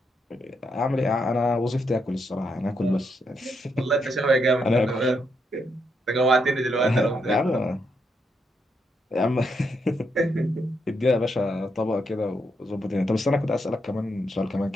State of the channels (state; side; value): normal; both; correlation 0.79